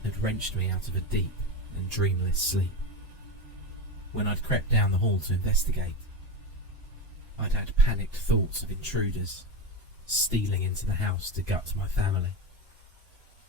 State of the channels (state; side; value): normal; both; correlation 0.19